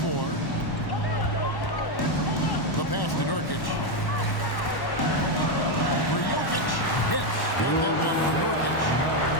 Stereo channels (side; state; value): right; late; 1.1 ms